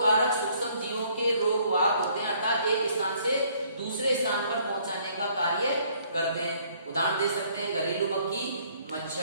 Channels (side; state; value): both; inverted; correlation -0.63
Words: कारक सूक्ष्म जीवों के रोग वाहक होते हैं, अर्थात एक स्थान से दूसरे स्थान पर पहुंचाने का कार्य करते हैं। उदाहरण दे सकते हैं घरेलू मक्खी,